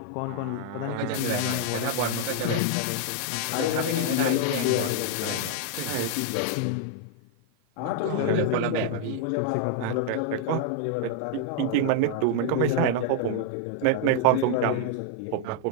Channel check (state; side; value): different; both; correlation 0.00